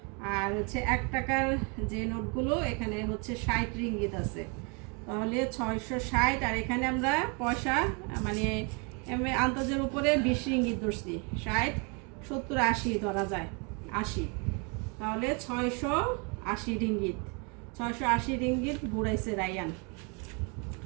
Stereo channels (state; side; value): quieter; left; 33.7 dB